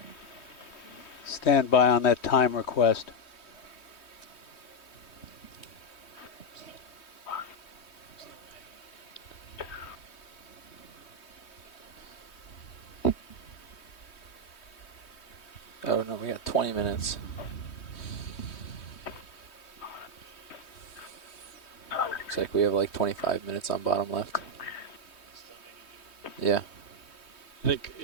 Stand by on that time request. Oh, no, we got 20 minutes. Looks like we have like 25 minutes on bottom left. Yeah. I think,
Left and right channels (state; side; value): late; right; 3.2 ms